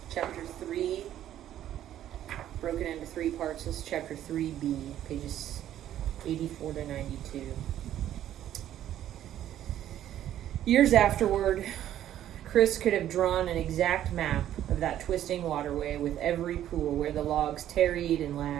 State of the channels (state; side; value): quieter; left; 11.7 dB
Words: Chapter 3, broken into 3 parts. This is Chapter 3b, pages 84 to 92. Years afterward, Chris could have drawn an exact map of that twisting waterway with every pool where the logs tarried and